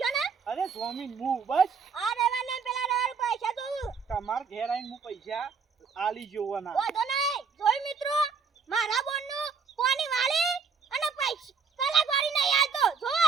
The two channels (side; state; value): left; quieter; 5.6 dB